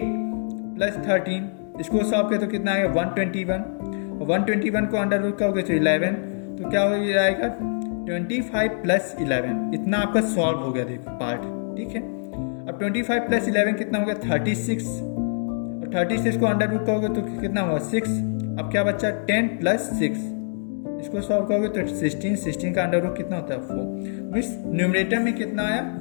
प्लस 13, इसको सॉल्व करें तो कितना आएगा, 121। 121 को अंडर रूट करोगे तो 11, तो क्या हो जाएगा, 25 प्लस 11। इतना आपका सॉल्व हो गया देखो पार्ट। ठीक है, अब 25 प्लस 11 कितना हो गया, 36, और 36 को अंडर रूट करोगे तो कितना हुआ, 6। अब क्या बच्चा, 10 प्लस 6, इसको सॉल्व करोगे तो 16, 16 का अंडर रूट कितना होता है, 4। इस न्यूमरेटर में कितना आया,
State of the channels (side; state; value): right; silent; digital silence